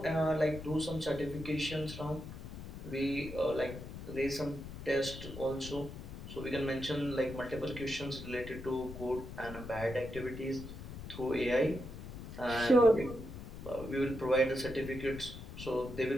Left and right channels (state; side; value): noise; left; rumble, 10 dB below the sound